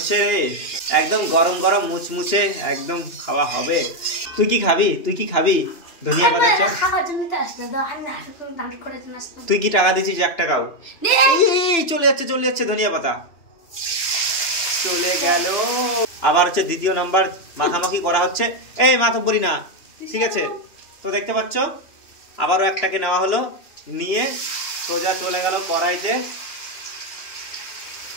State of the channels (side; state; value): right; late; 2.9 ms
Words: রে, একদম গরম গরম মুচমুচে একদম খাওয়া হবে। তুই কি খাবি ধনিয়া পাতার চপ? তুই কি টাকা দিছিস 1 টাকাও? চলে যাচ্ছে ধনিয়া পাতা, চলে গেল। আবার হচ্ছে দ্বিতীয় নাম্বার মাখামাখি করা হচ্ছে। এই মাতব্বরি না, ঠিক আছে। তো দেখতে পাচ্ছ আবারও একটাকে নেওয়া হলো, নিয়ে সোজা চলে গেল কড়াইতে।